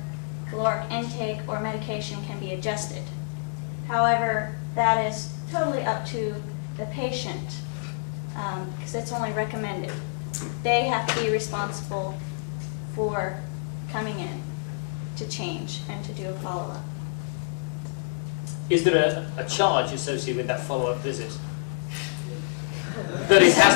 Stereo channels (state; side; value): silent; right; digital silence